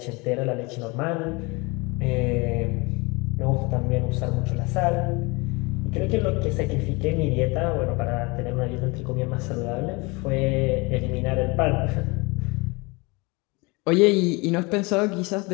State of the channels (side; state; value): right; quieter; 26.6 dB